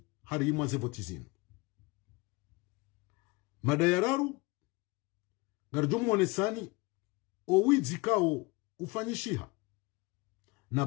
harimwa zevotizinu mada ya raru ngarjumu wonesani owizi kao ufanyishiha na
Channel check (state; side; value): quieter; right; 24.2 dB